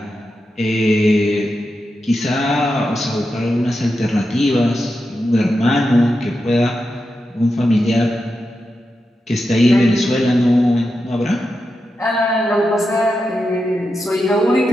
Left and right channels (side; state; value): both; normal; correlation 0.89